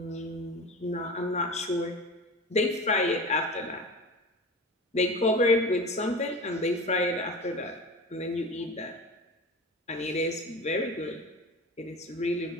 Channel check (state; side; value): normal; both; correlation 0.32